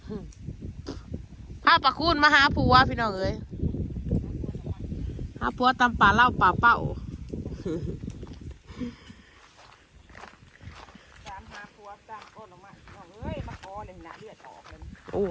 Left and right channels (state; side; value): identical; both; correlation 1.00